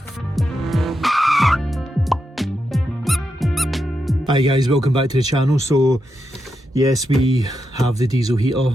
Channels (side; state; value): both; normal; correlation 0.86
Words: Hi guys, welcome back to the channel. So yes, we have the diesel heater,